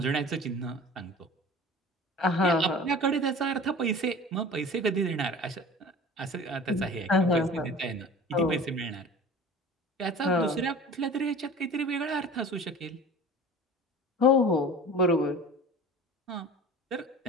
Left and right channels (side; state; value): both; normal; correlation 0.40